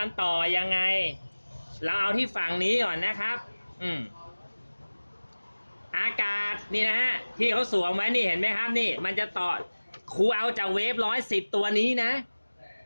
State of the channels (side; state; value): both; inverted; correlation -1.00